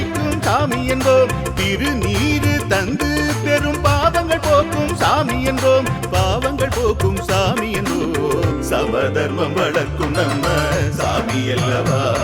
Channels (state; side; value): identical; both; correlation 1.00